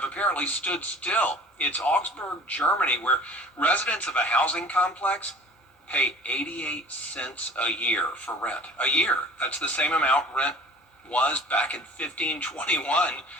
apparently stood still. It's Augsburg, Germany, where residents of a housing complex pay 88 cents a year for rent. A year. That's the same amount rent was back in 1521.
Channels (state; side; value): normal; both; correlation 0.45